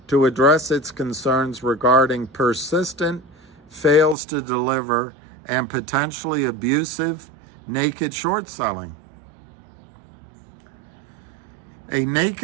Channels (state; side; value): drops out; left; at 4.2 s